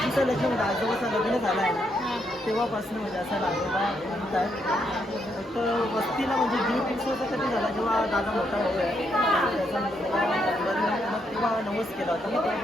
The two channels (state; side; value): normal; both; correlation 0.77